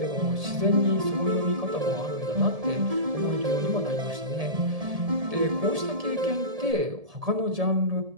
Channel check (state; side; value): late; left; 1.7 ms